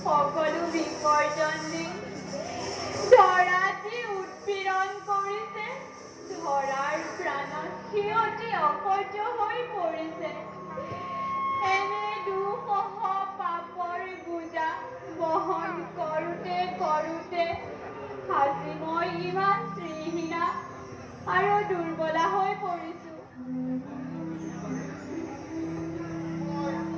সকলো বিসৰ্জন দি ধৰাত উৎপীড়ন কৰিছে। ধৰাৰ প্ৰাণত সিহঁতি অসহ্য হৈ পৰিছে। এনে দুঃসহ পাপৰ বোজা বহন কৰোঁতে আজি মই ইমান শ্ৰীহীনা আৰু দুৰ্বলা হৈ পৰিছো।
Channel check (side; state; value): both; identical; correlation 1.00